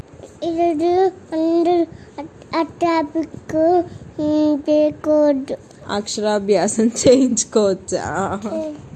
ఈరోజు అందరూ అట్టాపిక్ పేకోడ్ అక్షరాభ్యాసం చేయించుకోవచ్చా?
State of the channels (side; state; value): both; identical; correlation 1.00